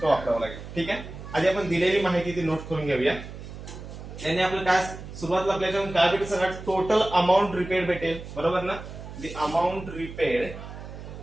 वापरावं लागेल. ठीक आहे. आधी आपण दिलेली माहिती ती नोट करून घेऊया. त्याने आपलं काय सुरुवातीला आपल्याला काय भेटेल सगळ्यात, टोटल अमाऊंट रिपेड भेटेल. बरोबर ना. The amount repaid,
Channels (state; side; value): noise; right; hum, 12 dB below the sound